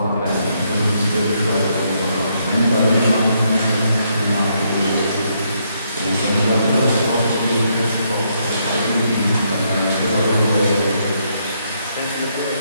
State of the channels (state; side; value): inverted; both; correlation -0.75